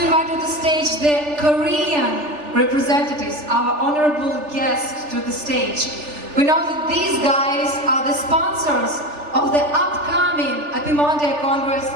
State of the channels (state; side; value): late; left; 3.4 ms